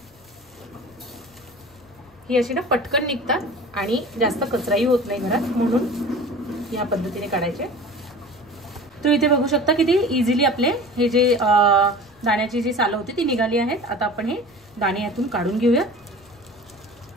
ही अशी ना पटकन निघतात आणि जास्त कचराही होत नाही घरात, म्हणून या पद्धतीने काढायचे। तो इथे बघू शकता किती इझिली आपले हे जे दाण्याची जी साल होती ती निघाली आहेत। आता आपण हे दाणे यातून काढून घेऊया।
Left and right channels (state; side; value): noise; left; rumble, 29 dB below the sound